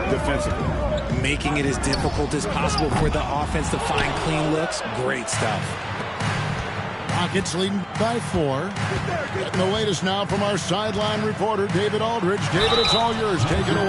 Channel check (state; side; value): identical; both; correlation 1.00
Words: defensively. Making it as difficult as possible for the offense to find clean looks. Great stuff. Rockets leading by 4. Getting the latest now from our sideline reporter, David Aldridge. David, it's all yours. Take it